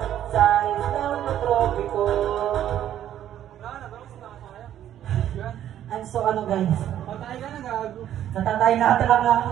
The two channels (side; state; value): left; quieter; 11.2 dB